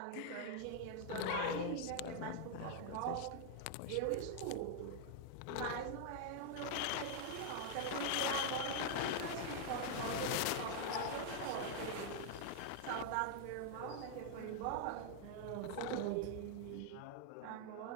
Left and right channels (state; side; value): different; both; correlation 0.00